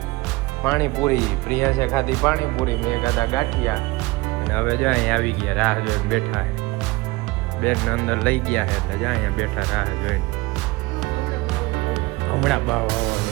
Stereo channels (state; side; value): quieter; left; 21.9 dB